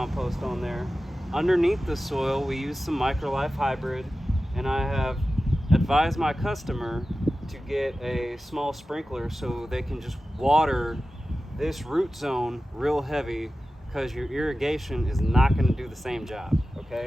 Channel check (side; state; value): both; normal; correlation 0.94